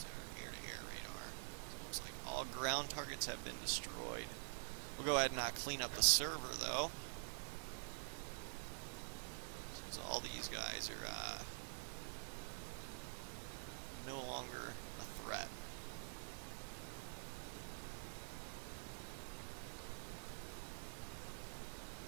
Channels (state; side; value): silent; left; digital silence